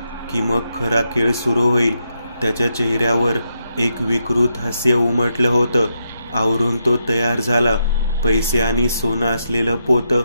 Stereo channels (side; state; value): both; inverted; correlation -0.81